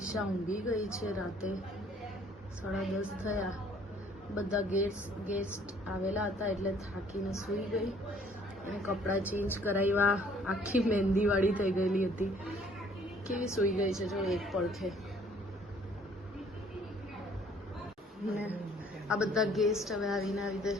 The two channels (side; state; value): both; normal; correlation 0.59